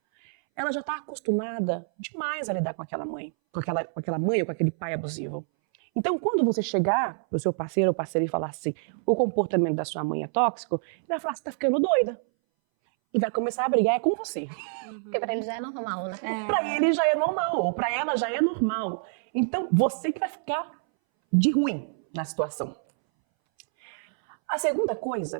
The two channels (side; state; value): left; silent; 60 dB below the other